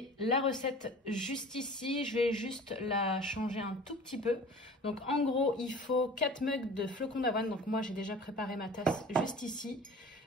la recette juste ici, je vais juste la changer un tout petit peu. Donc en gros, il faut 4 mugs de flocons d'avoine, donc moi j'ai déjà préparé ma tasse juste ici.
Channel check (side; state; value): both; normal; correlation 0.42